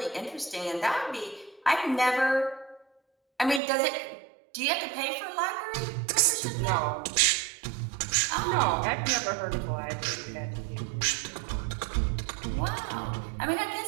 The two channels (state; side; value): drops out; left; at 3.6 s